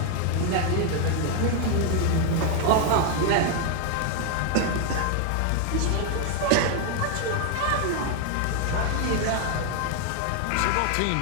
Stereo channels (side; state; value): both; different; correlation 0.00